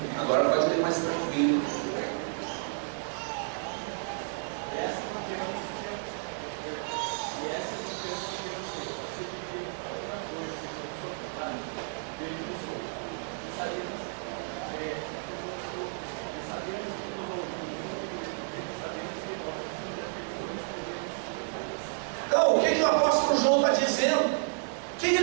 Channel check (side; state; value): left; silent; 57 dB below the other